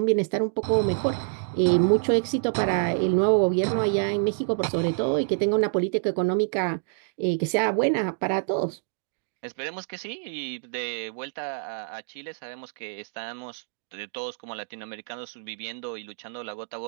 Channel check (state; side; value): silent; left; digital silence